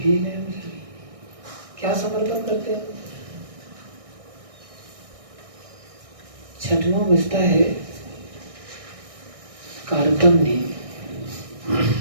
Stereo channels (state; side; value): late; left; 1.6 ms